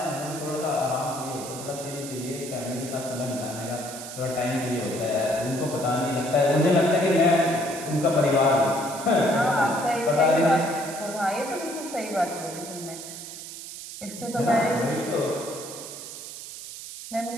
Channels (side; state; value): right; noise; hiss, 11 dB below the sound